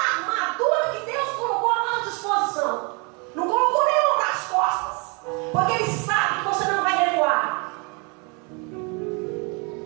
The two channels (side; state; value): left; quieter; 32.2 dB